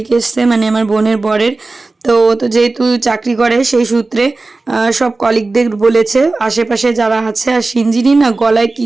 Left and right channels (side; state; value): left; quieter; 3.4 dB